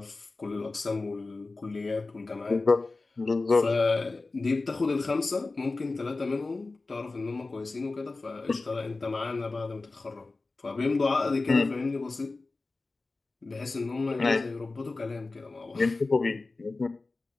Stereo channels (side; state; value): right; quieter; 3.5 dB